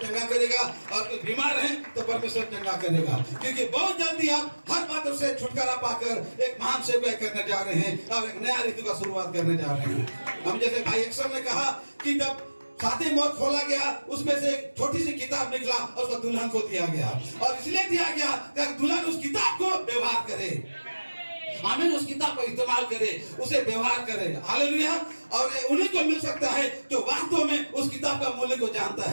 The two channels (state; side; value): inverted; both; correlation -1.00